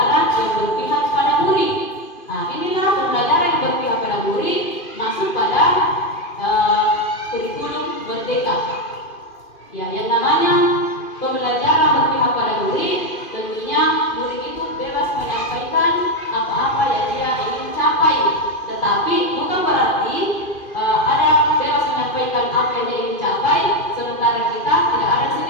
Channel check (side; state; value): right; late; 2.5 ms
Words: merdeka. Ya, yang namanya pembelajaran berpihak pada murid, tentunya murid itu bebas menyampaikan apa-apa yang dia ingin capai. Tetapi bukan berarti ada bebas menyampaikan apa yang dia ingin capai, sementara kita tidak ada di